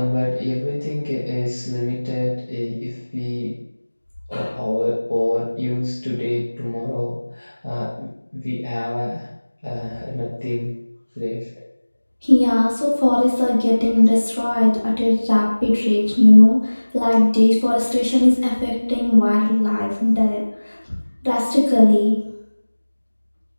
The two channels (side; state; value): both; inverted; correlation -1.00